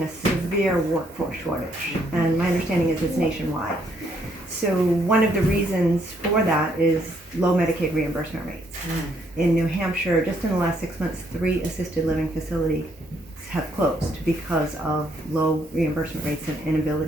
a severe workforce shortage, and my understanding is it's nationwide. So one of the reasons for that is low Medicaid reimbursement rates. In New Hampshire, just in the last 6 months, 3 assisted living facilities have closed because of low reimbursement rates and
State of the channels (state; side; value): normal; both; correlation 0.71